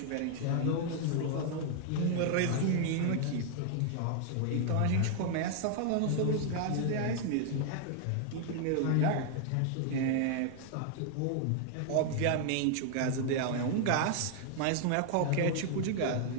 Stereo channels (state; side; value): different; both; correlation 0.00